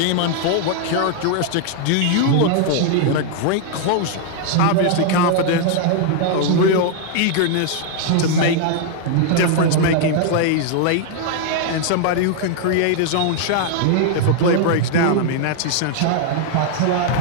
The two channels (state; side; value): different; both; correlation 0.00